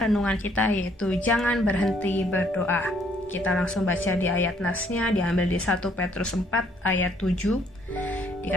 kita yaitu jangan berhenti berdoa. Kita langsung baca di ayat nasnya, diambil di 1 Petrus 4 ayat 7.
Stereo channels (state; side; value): normal; both; correlation 0.65